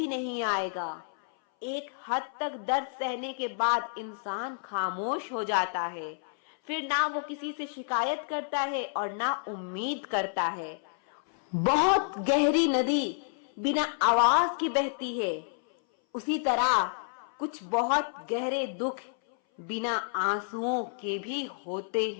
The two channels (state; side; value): silent; right; 58 dB below the other